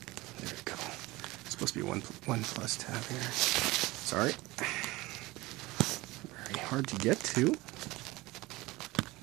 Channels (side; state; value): left; quieter; 20.7 dB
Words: we go. It's supposed to be one plus tab here. Sorry. Very hard to get to.